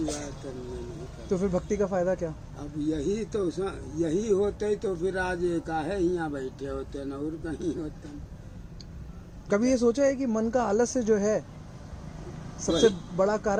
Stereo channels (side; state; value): both; identical; correlation 1.00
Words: बात करने नहीं कर। तो फिर भक्ति का फायदा क्या? अब यही तो यही होते तो फिर आज काहे यहाँ बैठे होते न और कहीं होते। कभी ये सोचा है कि मन का आलस्य जो है सबसे बड़ा